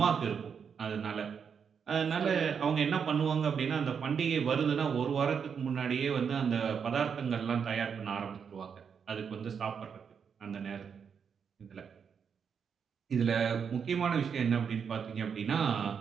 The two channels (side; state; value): left; quieter; 6.8 dB